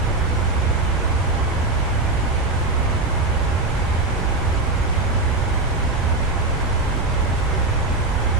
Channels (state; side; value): quieter; left; 3.1 dB